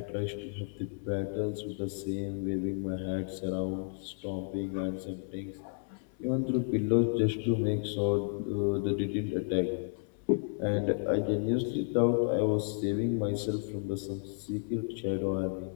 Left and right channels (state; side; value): silent; right; 56 dB below the other